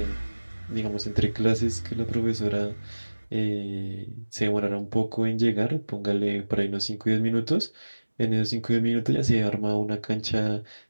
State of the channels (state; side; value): inverted; both; correlation -1.00